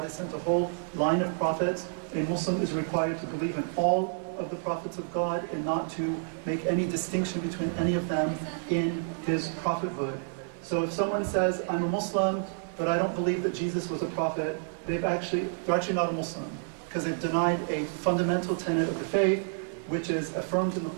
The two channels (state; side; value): silent; left; 58 dB below the other